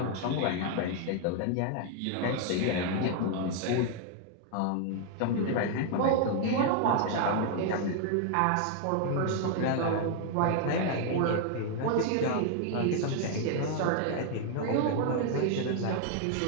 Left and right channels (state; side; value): different; both; correlation 0.00